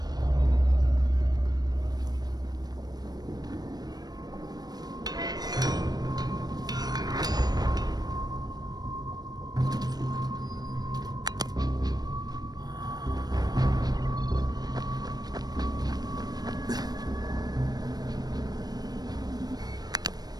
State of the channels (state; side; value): late; left; 0.19 ms